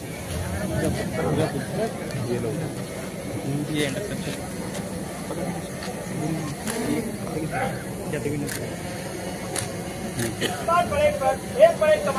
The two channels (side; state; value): both; identical; correlation 1.00